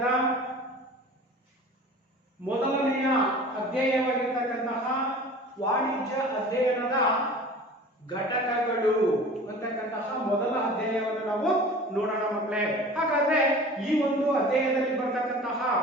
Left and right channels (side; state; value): both; normal; correlation 0.41